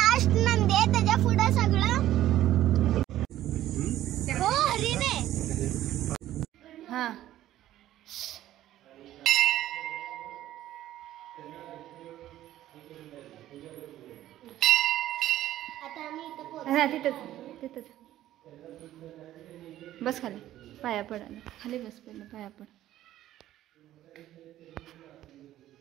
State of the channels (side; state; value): left; quieter; 13.5 dB